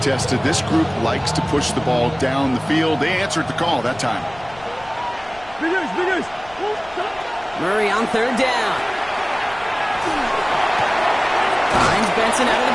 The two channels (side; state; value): left; noise; rumble, 23 dB below the sound